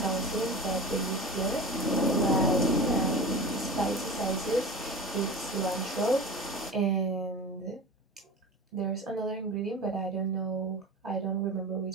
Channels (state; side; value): normal; both; correlation 0.32